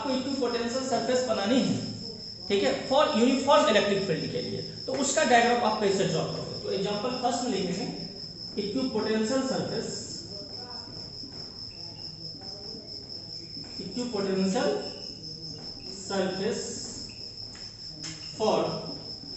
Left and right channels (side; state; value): both; identical; correlation 1.00